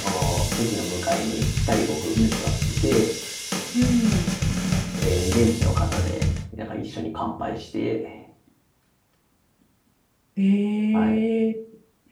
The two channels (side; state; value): both; identical; correlation 1.00